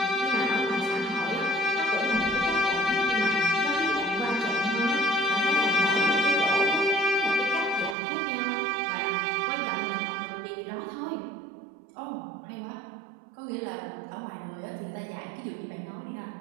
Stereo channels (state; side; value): drops out; left; at 8.0 s